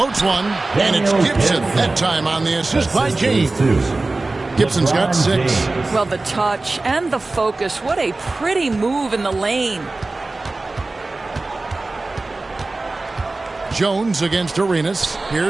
one, and it's Gibson. That time on the assist by James. Gibson's got 6. Well, the touch and the focus. What a pretty move in the lane. Jones against Arenas.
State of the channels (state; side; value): quieter; left; 3.2 dB